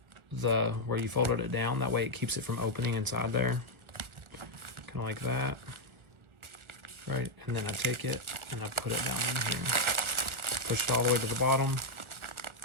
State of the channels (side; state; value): left; late; 1.4 ms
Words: the where you folded it down. That way it keeps it from opening inside there. Kind of like that. Right, and then I take it and I put it down in here. Push it all the way to the bottom.